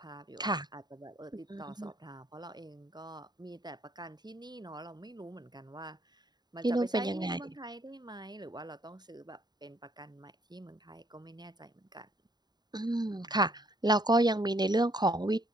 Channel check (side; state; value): left; late; 0.20 ms